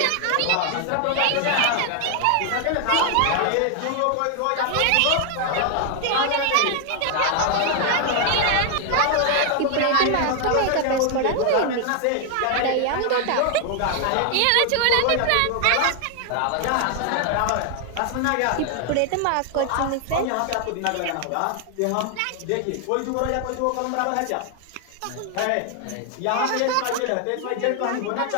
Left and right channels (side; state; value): both; different; correlation 0.00